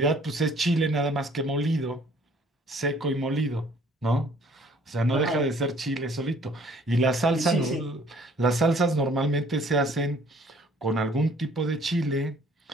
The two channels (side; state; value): both; normal; correlation 0.58